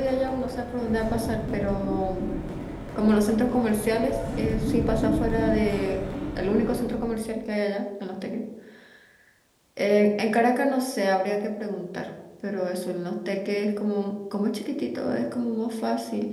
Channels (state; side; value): identical; both; correlation 1.00